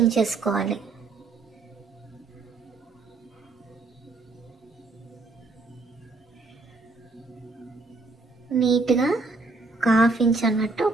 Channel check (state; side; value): quieter; left; 3.6 dB